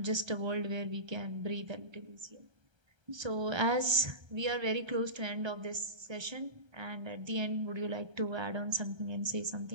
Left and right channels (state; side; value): late; left; 1.3 ms